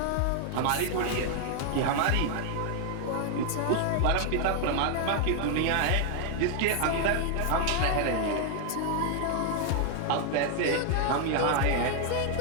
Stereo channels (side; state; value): both; different; correlation 0.00